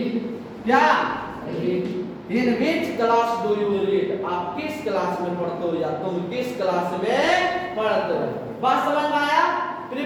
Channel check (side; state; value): both; identical; correlation 1.00